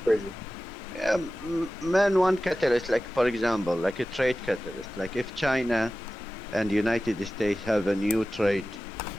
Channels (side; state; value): both; normal; correlation 0.95